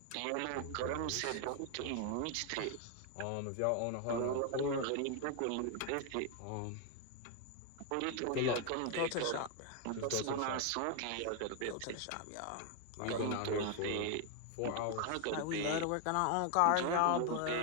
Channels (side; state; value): both; different; correlation 0.00